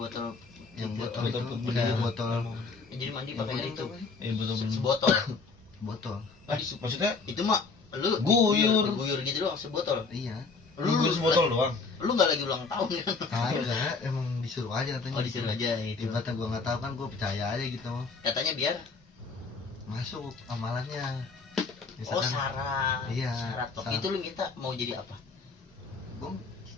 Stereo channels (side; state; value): right; quieter; 4.4 dB